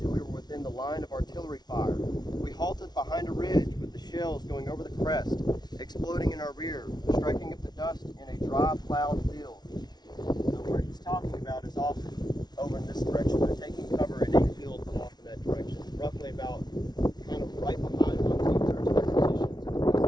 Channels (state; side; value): late; right; 0.19 ms